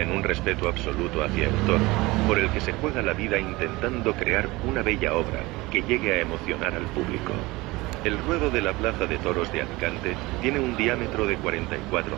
en un respeto absoluto hacia el toro, por el que se juega la vida intentando crear una bella obra que llegue a emocionar al público. El ruedo de la Plaza de Toros de Alicante tiene un diámetro de 44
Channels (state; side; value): quieter; left; 21.4 dB